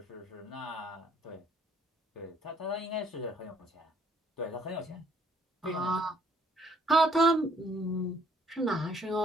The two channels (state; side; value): normal; both; correlation 0.64